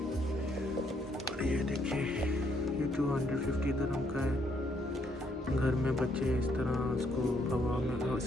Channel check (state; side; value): normal; both; correlation 0.71